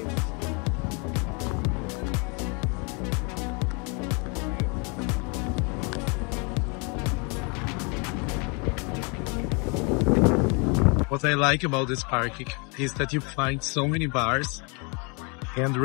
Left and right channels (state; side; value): quieter; right; 32.5 dB